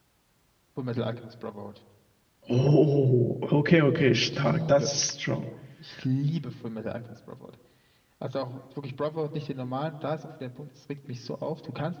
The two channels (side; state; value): both; identical; correlation 1.00